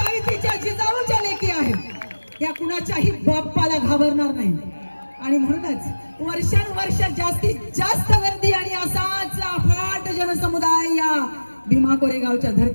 जिजाऊच्या लेकी आहेत, या कुणाच्याही बाप्पाला घाबरणार नाही. आणि म्हणूनच वर्षानुवर्ष जास्तीत जास्त गर्दी आणि असाच अफाट जनसमुदाय या भीमा कोरेगावच्या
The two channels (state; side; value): inverted; both; correlation -1.00